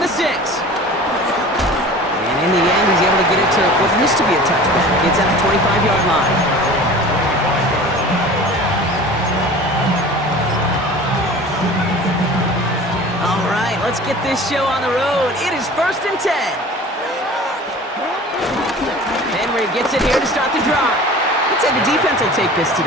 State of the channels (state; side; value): normal; both; correlation 0.41